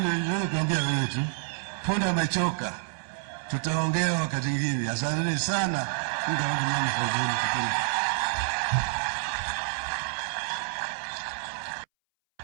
ndio kuambia wewe tu. Punda imechoka. Tutaongea wakati mwingine. Asante sana.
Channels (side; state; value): left; silent; 59 dB below the other